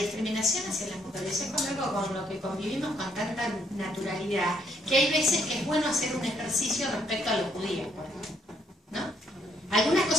hacia las mujeres, es con algo con lo que convivimos con tanta naturalidad, que hay veces que es bueno hacer un ejercicio respecto a los judíos, por ejemplo, ¿no? Algunas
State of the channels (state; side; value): normal; both; correlation 0.71